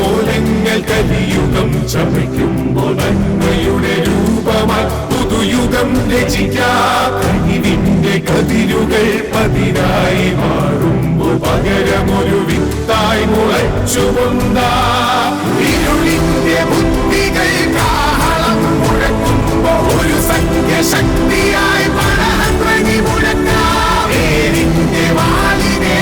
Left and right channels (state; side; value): identical; both; correlation 1.00